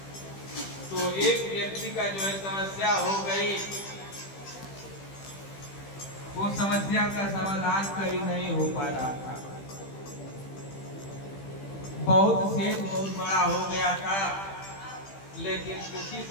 तो एक व्यक्ति का जो है समस्या हो गई, वो समस्या का समाधान कहीं नहीं हो पा रहा था। बहुत सेठ बहुत बड़ा हो गया था, लेकिन उसी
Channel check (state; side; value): late; right; 15 ms